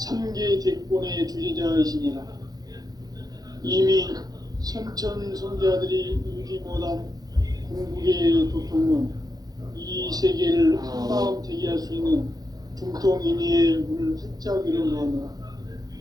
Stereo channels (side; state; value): left; late; 0.19 ms